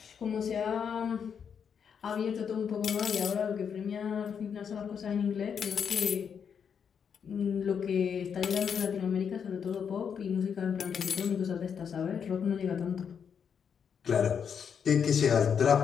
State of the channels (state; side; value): quieter; right; 7.2 dB